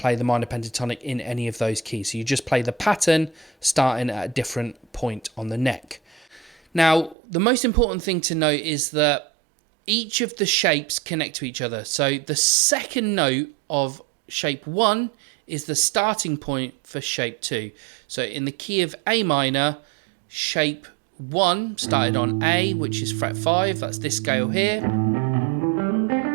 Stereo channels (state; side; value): drops out; left; at 7.2 s